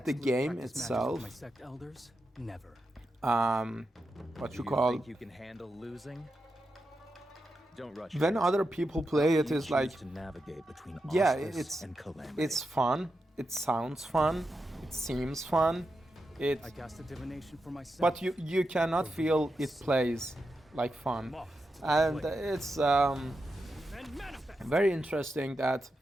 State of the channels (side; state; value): both; normal; correlation 0.88